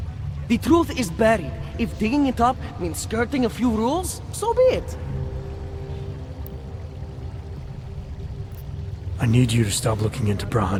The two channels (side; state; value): both; identical; correlation 1.00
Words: The truth is buried. If digging it up means skirting a few rules, so be it. I need you to stop looking into Praha